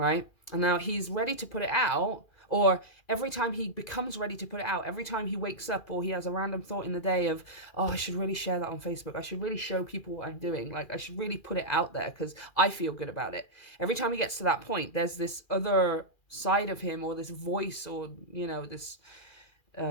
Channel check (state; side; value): late; right; 2.4 ms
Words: And now he's ready to put it out, or every time he becomes ready to put it out, every time he wakes up or he has a random thought in the day of, oh, I should really share that on Facebook. I should really show people what I'm doing. Like, I should really put it out there because I feel good about it. Every time he gets to that point, there's this other side of him or this voice or, this